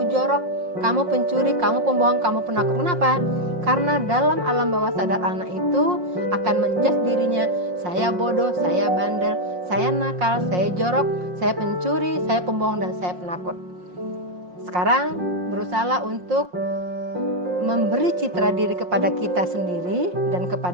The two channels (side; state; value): left; late; 5.6 ms